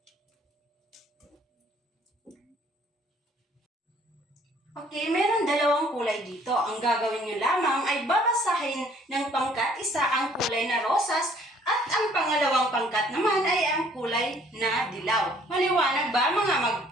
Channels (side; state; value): both; normal; correlation 0.59